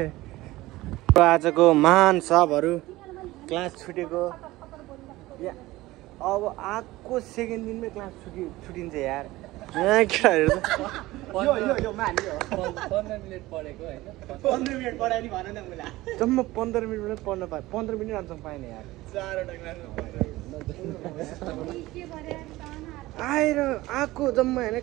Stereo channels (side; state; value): left; quieter; 18.3 dB